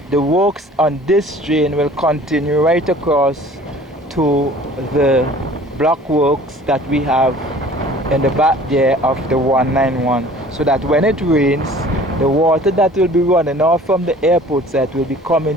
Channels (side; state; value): both; normal; correlation 0.49